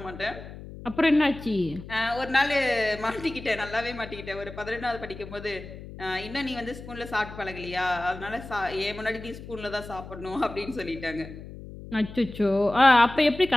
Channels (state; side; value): noise; left; hum, 13 dB below the sound